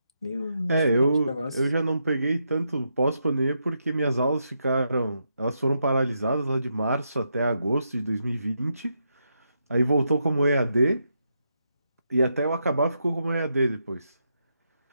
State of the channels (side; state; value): both; inverted; correlation -0.82